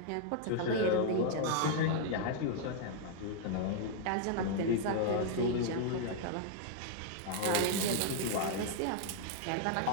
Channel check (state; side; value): different; both; correlation 0.00